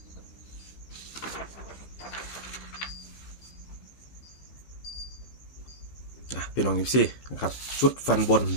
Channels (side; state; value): right; late; 15 ms